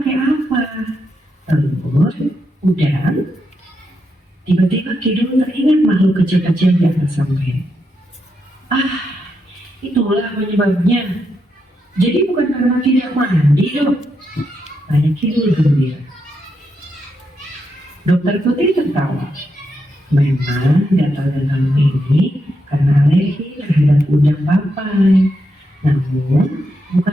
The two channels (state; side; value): normal; both; correlation 0.83